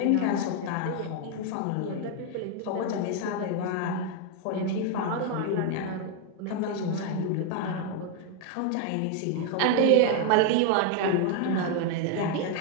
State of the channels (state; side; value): different; both; correlation 0.01